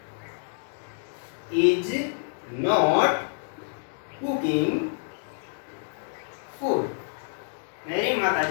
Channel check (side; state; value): right; silent; digital silence